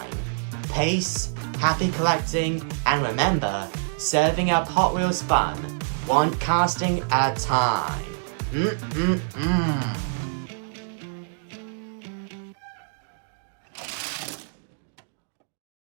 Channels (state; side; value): silent; left; digital silence